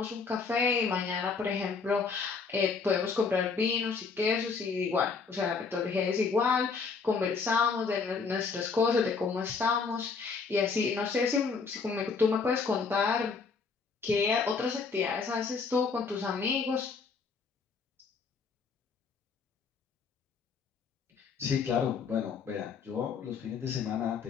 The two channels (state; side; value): quieter; right; 5.1 dB